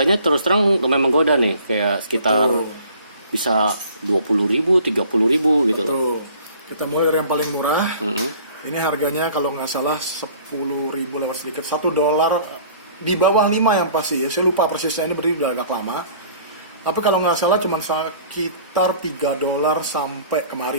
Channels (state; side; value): inverted; both; correlation -0.51